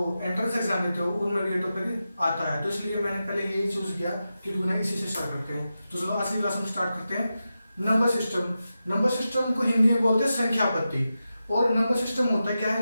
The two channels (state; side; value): inverted; both; correlation -0.91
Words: एंट्रेंस एग्जाम देते हो उनमें भी ये टॉपिक आता है। तो इसलिए मैंने पहले यही चूज किया कि क्यों ना इसी से स्टार्ट करते हैं। तो चलो आज की क्लास में स्टार्ट करते हैं। Number system. नंबर सिस्टम को हिंदी में बोलते हैं संख्या पद्धति। और नंबर सिस्टम होता है क्या है,